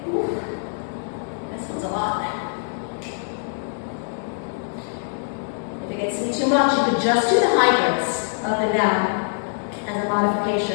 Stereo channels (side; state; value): right; silent; 63 dB below the other